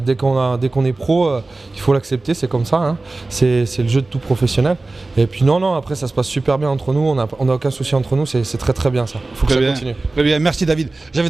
qu'on est pro, il faut l'accepter, c'est comme ça, hein. C'est le jeu de tout professionnel. Et puis non, après ça se passe super bien entre nous, on n'a aucun souci entre nous, c'est très bien ça, il faut que ça continue. Très bien, merci David. J'avais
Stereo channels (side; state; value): left; quieter; 3.3 dB